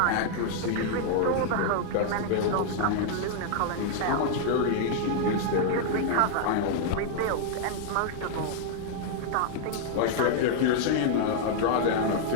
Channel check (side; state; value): both; different; correlation 0.00